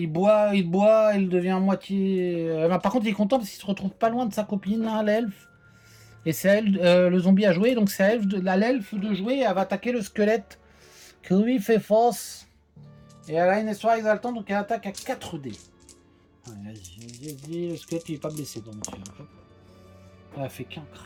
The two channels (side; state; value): both; identical; correlation 1.00